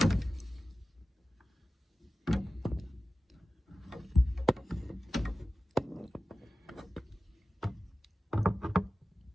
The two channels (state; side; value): normal; both; correlation 0.94